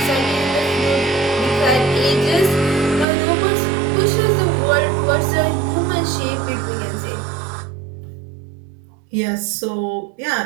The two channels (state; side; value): drops out; left; at 3.1 s